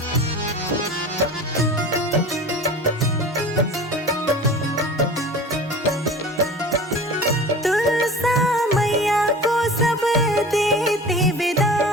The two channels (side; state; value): both; normal; correlation 0.38